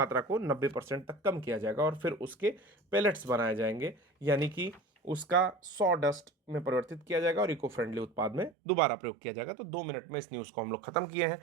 को 90% तक कम किया जाएगा और फिर उसके पेलेट्स बनाए जाएंगे, यानी कि उसका सॉ डस्ट में परिवर्तित किया जाएगा और इको फ्रेंडली उत्पाद में दोबारा प्रयोग किया जाएगा। तो 2 मिनट में इस न्यूज़ को हम लोग खत्म किए हैं।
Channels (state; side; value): drops out; left; at 8.5 s